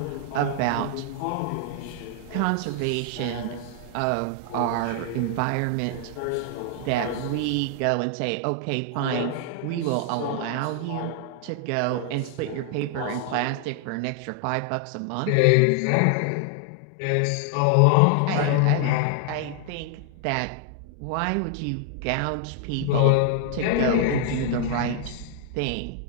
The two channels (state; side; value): different; both; correlation 0.00